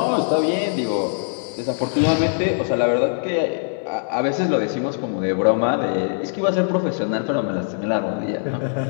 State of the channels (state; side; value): silent; right; 64 dB below the other